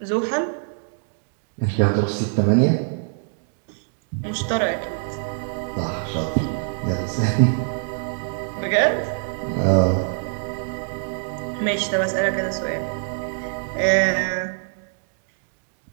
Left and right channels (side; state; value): left; silent; 60 dB below the other